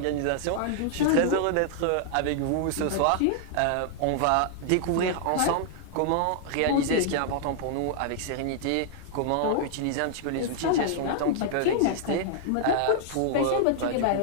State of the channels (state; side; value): different; both; correlation -0.01